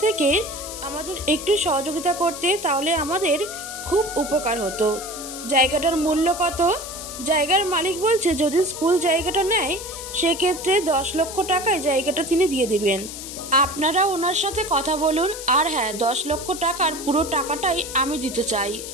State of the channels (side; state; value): left; noise; hiss, 10 dB below the sound